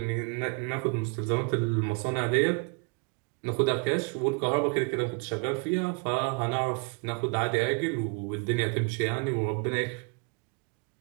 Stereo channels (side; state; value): left; quieter; 33.8 dB